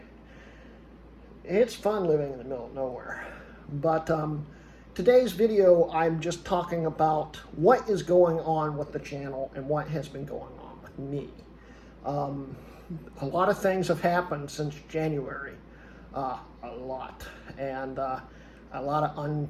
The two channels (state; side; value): identical; both; correlation 1.00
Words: It's fun living in the middle of nowhere. But today's video, I'm just talking about what is going on with the channel and what has been going on with me. A lot of things have happened since January, a lot, and a lot of